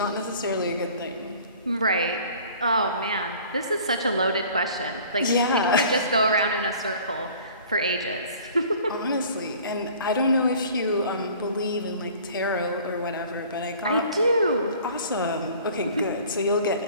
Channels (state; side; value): inverted; both; correlation -0.48